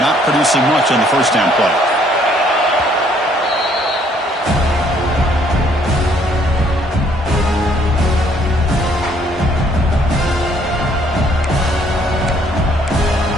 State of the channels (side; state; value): both; normal; correlation 0.64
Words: producing much on the first down play.